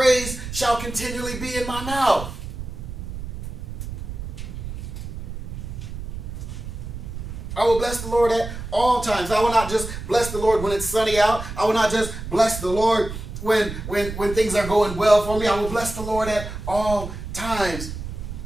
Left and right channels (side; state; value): right; noise; rumble, 8 dB below the sound